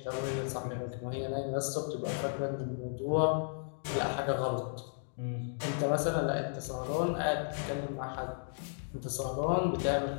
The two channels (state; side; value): silent; right; digital silence